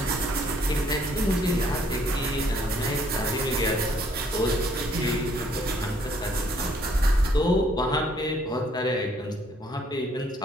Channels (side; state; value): both; normal; correlation 0.65